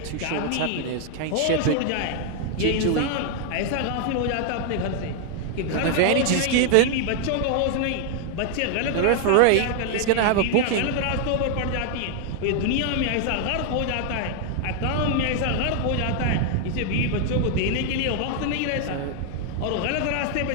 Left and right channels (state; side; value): different; both; correlation 0.00